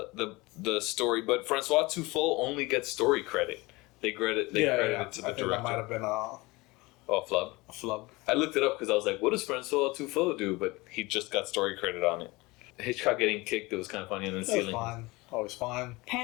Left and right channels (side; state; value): right; quieter; 22.9 dB